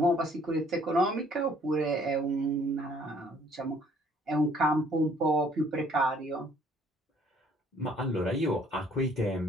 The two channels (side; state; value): both; normal; correlation 0.61